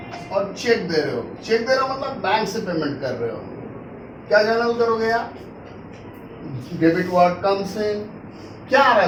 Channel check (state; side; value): identical; both; correlation 1.00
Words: और चेक दे रहे हो। चेक दे रहे हो मतलब बैंक से पेमेंट कर रहे हो। क्या जर्नल करोगे यार? Debit word comes in. क्या आ रहा